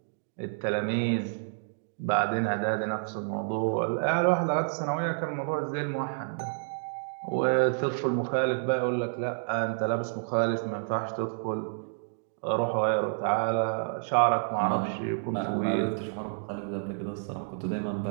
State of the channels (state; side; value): silent; left; digital silence